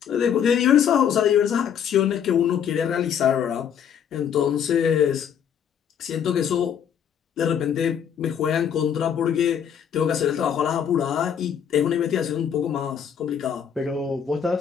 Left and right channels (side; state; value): right; quieter; 8.4 dB